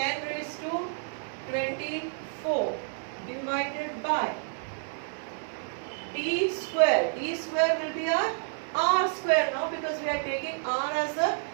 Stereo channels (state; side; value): silent; left; digital silence